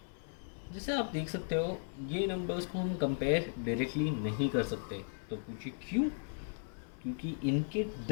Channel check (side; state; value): right; silent; 53 dB below the other